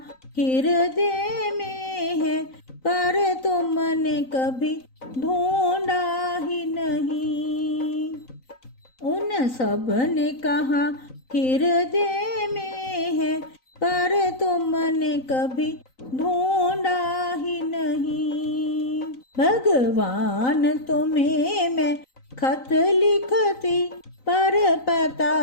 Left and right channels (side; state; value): right; late; 3.9 ms